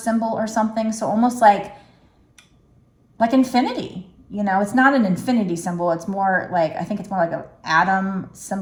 symbol or something. So almost like infinity. It's not an infinity symbol. It's more like, I think it's more like an atom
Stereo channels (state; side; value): identical; both; correlation 1.00